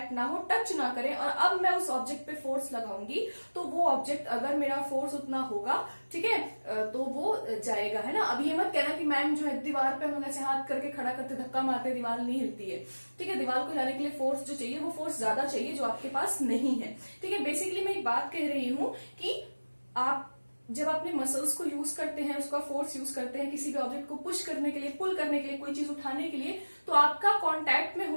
ना हो, टच ना करे, और अब मैं उस ऑब्जेक्ट पे फोर्स लगाऊंगी तो वो ऑब्जेक्ट, अगर मेरा फोर्स उतना होगा, ठीक है, तो वो जाएगा, है ना। अब ये मत कहना कि मैम जो है दीवार पे हम लोग ऐसे हाथ करके खड़ा करते धक्का मारते दीवार नहीं हिलती है, ठीक है। दीवार को हिलाने के लिए फोर्स जो चाहिए वो फोर्स ज्यादा चाहिए, जो आपके पास नहीं है, ठीक है। बेसिकली मैं एक बात कह रही हूँ कि आप जब अपने मसल्स को यूज करते हैं, उसका फोर्स यूज करते हैं किसी भी ऑब्जेक्ट को पुश करने के लिए, पुल करने के लिए, कोई चीज उठाने के लिए, तो आपका कांटेक्ट में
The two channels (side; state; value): both; inverted; correlation -1.00